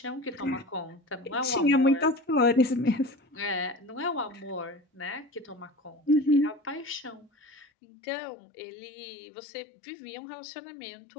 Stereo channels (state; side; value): drops out; right; at 7.7 s